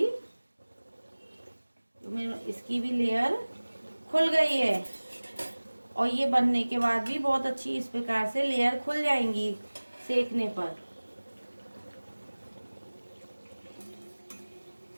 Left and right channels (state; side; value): inverted; both; correlation -1.00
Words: इसकी भी लेयर खुल गई है और ये बनने के बाद भी बहुत अच्छी इस प्रकार से लेयर खुल जाएंगी सेकने पर।